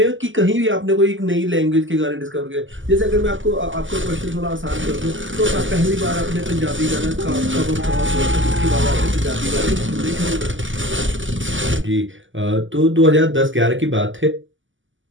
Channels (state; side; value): late; left; 0.56 ms